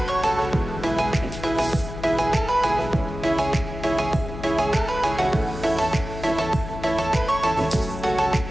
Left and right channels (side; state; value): left; noise; hum, 10 dB below the sound